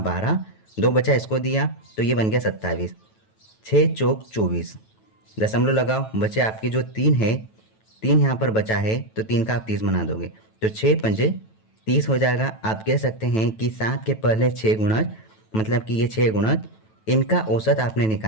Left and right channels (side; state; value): right; late; 9.2 ms